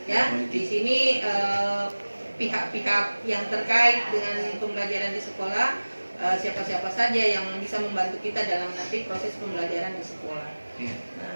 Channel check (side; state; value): both; inverted; correlation -1.00